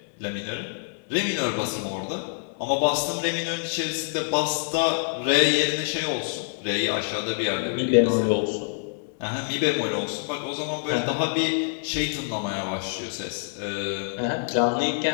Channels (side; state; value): right; silent; 61 dB below the other